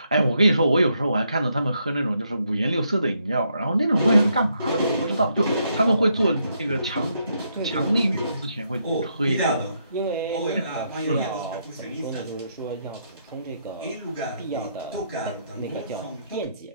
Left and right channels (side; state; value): both; inverted; correlation -0.77